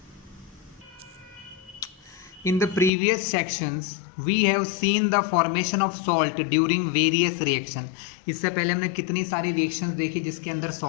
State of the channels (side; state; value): right; drops out; at 2.9 s